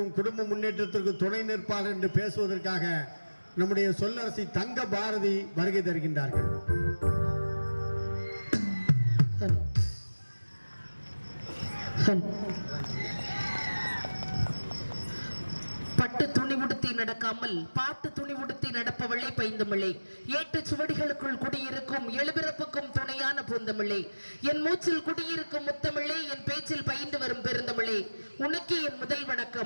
குடும்ப முன்னேற்றத்திற்கும் துணை நிற்பார் என்று பேசுவதற்காக நம்முடைய சொல்லரசி தங்க பாரதி வருகை தருகின்றார்கள். பட்டு துணி உடுத்தி நடக்காமல் பாட்டு துணி உடுத்தி நடப்பவளே பைந்தமிழே, ஏட்டு சுவடிகளுக்குள் குடியிருக்கும் எழுபிறப்புக்கும் துணையான பூந்தமிழே, என் மூச்சில் குடியிருக்கும் முத்தமிழே, என் பேச்சில் பயின்று வரும் பெருந்தமிழே, உனக்கு என் முதல்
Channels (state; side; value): inverted; both; correlation -1.00